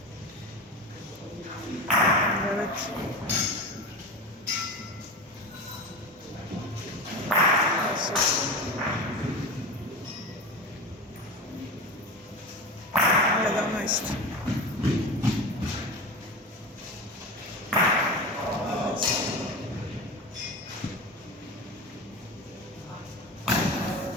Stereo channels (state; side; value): normal; both; correlation 0.26